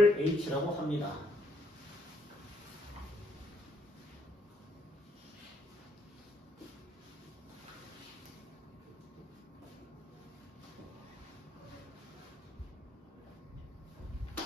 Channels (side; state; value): both; normal; correlation 0.71